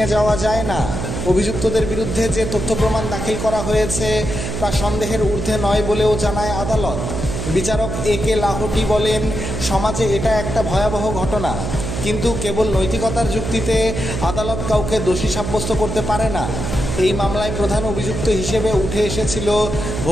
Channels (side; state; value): right; noise; hum, 4 dB below the sound